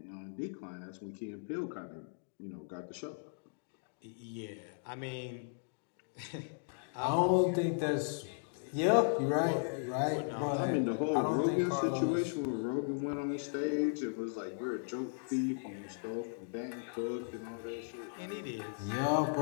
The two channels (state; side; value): silent; right; digital silence